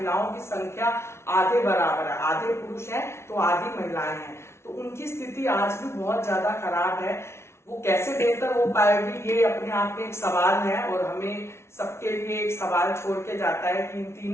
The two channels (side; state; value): right; late; 0.13 ms